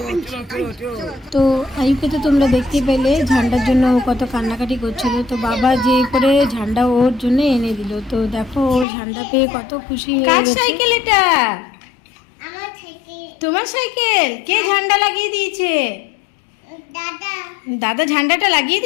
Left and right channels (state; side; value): drops out; right; at 8.8 s